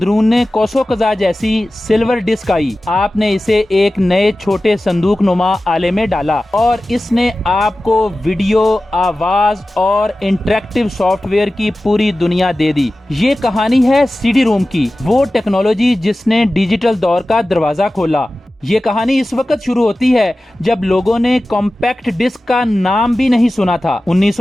کوسو قزح جیسی سلور ڈسک آئی۔ آپ نے اسے ایک نئے چھوٹے صندوق نما آلے میں ڈالا اور اس نے آپ کو ویڈیو، آواز اور انٹریکٹیو سافٹ ویئر کی پوری دنیا دے دی۔ یہ کہانی ہے سی ڈی روم کی، وہ ٹیکنالوجی جس نے ڈیجیٹل دور کا دروازہ کھولا۔ یہ کہانی اس وقت شروع ہوتی ہے جب لوگوں نے کمپیکٹ ڈسک کا نام بھی نہیں سنا تھا۔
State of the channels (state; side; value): normal; both; correlation 0.95